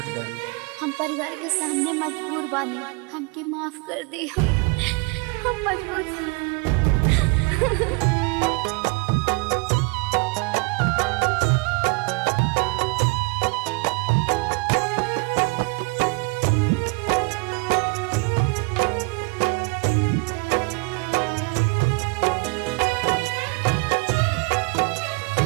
गई? हम परिवार के सामने मजबूर बानी, हमके माफ कर दे। हम मजबूर बानी।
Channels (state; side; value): quieter; left; 29.5 dB